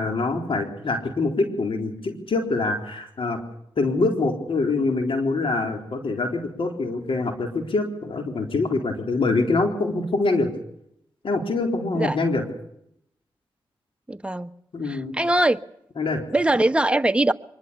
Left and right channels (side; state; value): both; normal; correlation 0.73